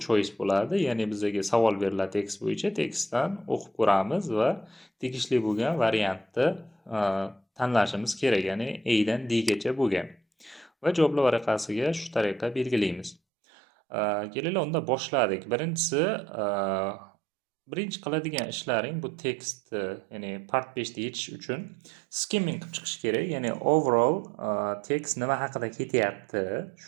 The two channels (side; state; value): left; drops out; at 13.2 s